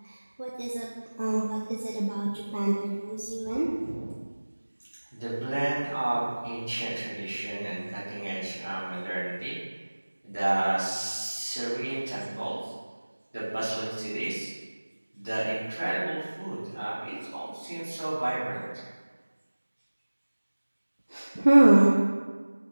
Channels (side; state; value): both; inverted; correlation -1.00